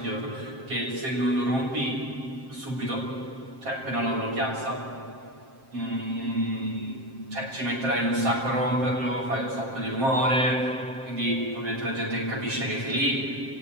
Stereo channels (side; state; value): left; late; 7.6 ms